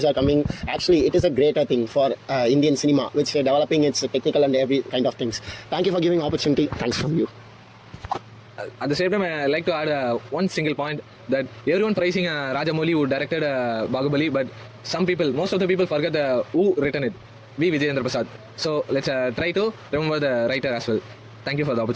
are coming. Actually, it is a greater thing for Indian cinema, which developing its technical and every kind of things. Thank you for giving opportunity. Thanks from you. at the same time, I like to add one single point that everyone praising Rajamouli who directed Bahubali, but most of the people forget who written it. V. Vijayendra Prasad. So let's try to remember the writer as well. Thank you for the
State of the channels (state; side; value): identical; both; correlation 1.00